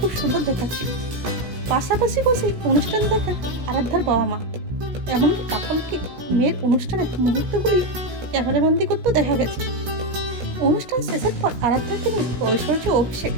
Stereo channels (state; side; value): late; left; 17 ms